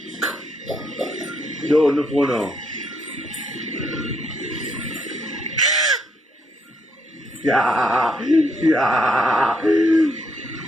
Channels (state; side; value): normal; both; correlation 0.74